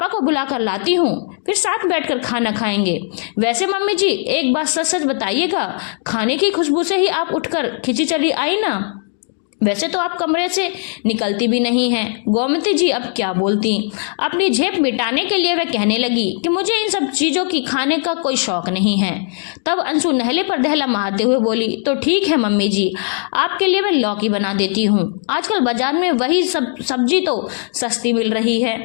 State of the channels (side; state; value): right; silent; 55 dB below the other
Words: को बुलाकर लाती हूँ, फिर साथ बैठकर खाना खाएंगे। वैसे मम्मी जी एक बात सच सच बताइएगा, खाने की खुशबू से ही आप उठकर खिंची चली आई ना? वैसे तो आप कमरे से निकलती भी नहीं हैं। गोमती जी अब क्या बोलती। अपनी झेप मिटाने के लिए वह कहने लगी कि मुझे इन सब चीजों की खाने का कोई शौक नहीं है। तब अंशु नहले पर दहला मारते हुए बोली, तो ठीक है मम्मी जी, आपके लिए मैं लौकी बना देती हूँ। आजकल बाजार में वही सब सब्जी तो सस्ती मिल रही है।